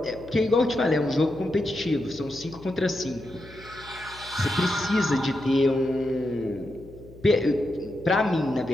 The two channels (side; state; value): left; noise; hum, 20 dB below the sound